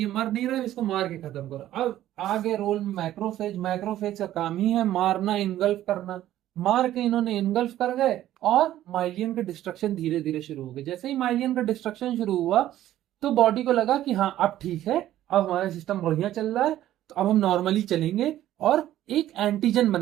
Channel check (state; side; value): quieter; left; 13.2 dB